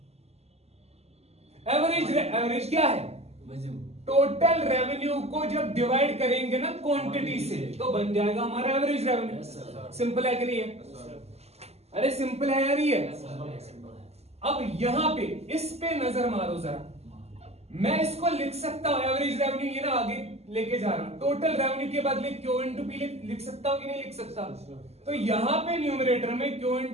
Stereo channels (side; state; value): left; late; 0.30 ms